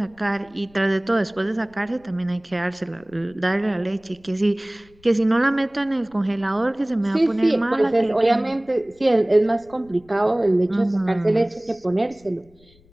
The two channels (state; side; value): noise; left; rumble, 29 dB below the sound